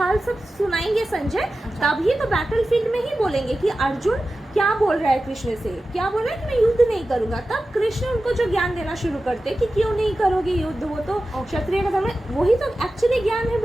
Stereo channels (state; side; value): normal; both; correlation 0.94